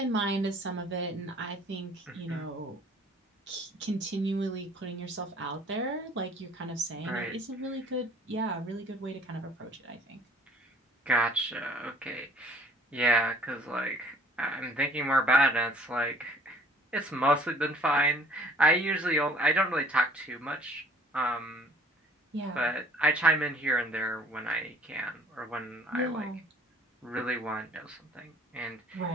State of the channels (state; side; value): normal; both; correlation 0.55